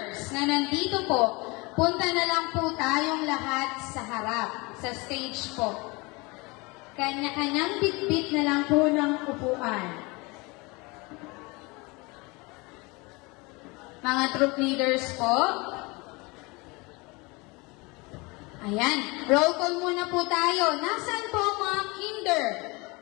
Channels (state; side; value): quieter; right; 26.0 dB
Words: na nandito po, punta na lang po tayong lahat sa harap, sa stage po. Kanya-kanyang bitbit na lang po ng upuan. Mga troop leaders po. Ayan, roll call muna po tayo. Nasaan po ang mga kinder?